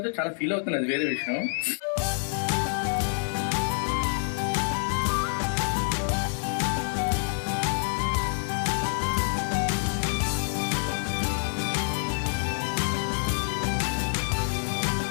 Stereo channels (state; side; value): silent; right; 60 dB below the other